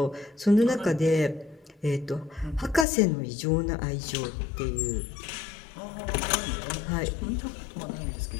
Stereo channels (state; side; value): drops out; right; at 2.9 s